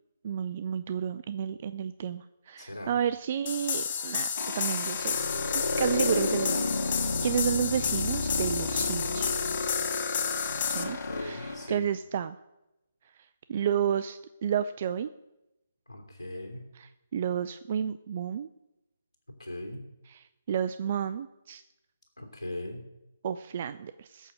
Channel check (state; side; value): inverted; both; correlation -0.65